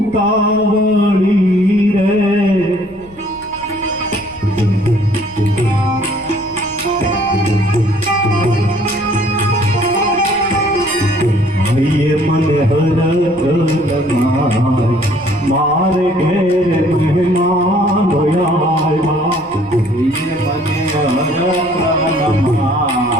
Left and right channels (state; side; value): noise; left; rumble, 23 dB below the sound